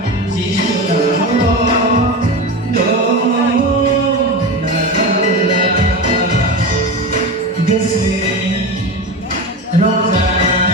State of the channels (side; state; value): both; normal; correlation 0.24